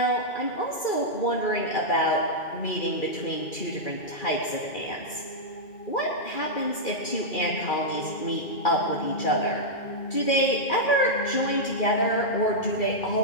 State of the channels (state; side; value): late; right; 2.4 ms